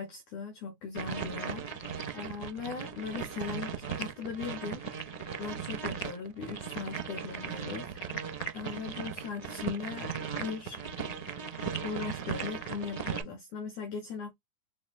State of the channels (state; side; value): late; right; 9.7 ms